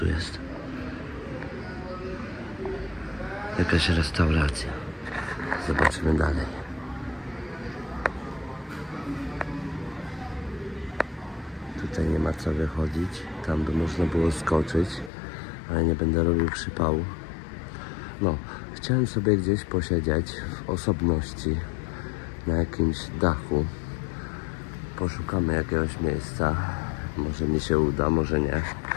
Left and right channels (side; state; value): right; drops out; at 15.1 s